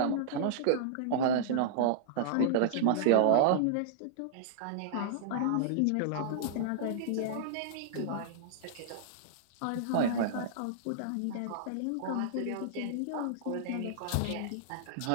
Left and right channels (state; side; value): different; both; correlation -0.01